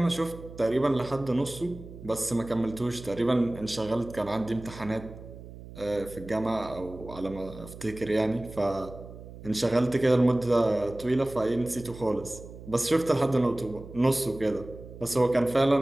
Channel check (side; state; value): right; noise; hum, 15 dB below the sound